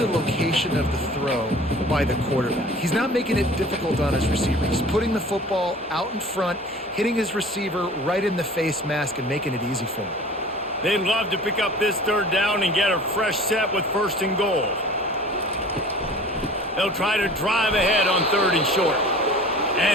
location of the throw by the quarterback. He's not making it difficult on his receiver. He's putting the football out in front, hitting his receiver right in the face mask and making it easy for him. They'd love to pick up this third down and get a fresh set with first and goal. They'll try to drive ahead on third and short.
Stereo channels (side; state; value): both; normal; correlation 0.44